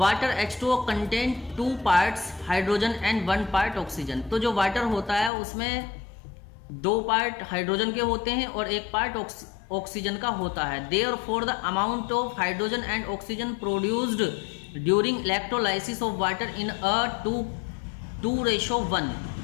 H2O contain 2 parts hydrogen and 1 part oxygen. तो जो वाटर होता है उसमें 2 पार्ट हाइड्रोजन के होते हैं और 1 पार्ट ऑक्सीजन का होता है. Therefore the amount of hydrogen and oxygen produced during electrolysis of water in a 2:1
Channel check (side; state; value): right; drops out; at 5.3 s